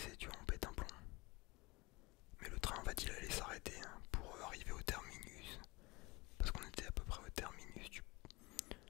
tu vois, on pète un plomb. Mais le train, en fait, il allait s'arrêter pour arriver au terminus. Parce qu'on était à peu près au terminus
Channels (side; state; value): right; quieter; 24.1 dB